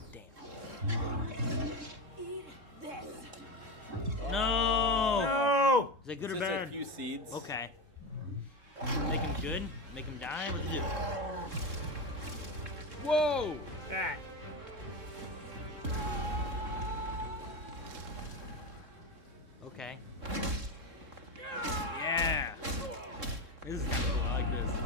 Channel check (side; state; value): left; late; 3.7 ms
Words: Damn. Eat this. No. No. Is that good Just or bad? a few seeds. Okay. Make him good? Make him die? What is it? Whoa! Ah. Okay. Yeah. This is I like